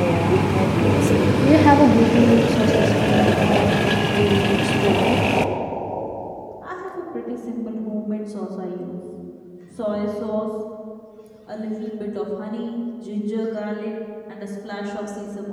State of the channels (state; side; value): identical; both; correlation 1.00